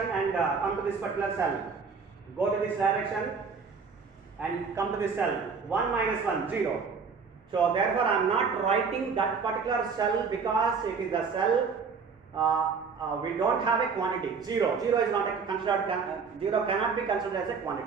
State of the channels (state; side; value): quieter; left; 5.4 dB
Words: and come to this particular cell. Go to this direction and come to this cell. 1 minus 1, 0. So therefore I am not writing that particular cell because it is the cell we don't have a quantity. 0 is not considered, 0 cannot be considered as a